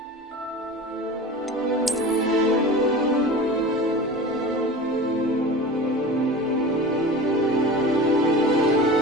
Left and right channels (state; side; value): normal; both; correlation 0.35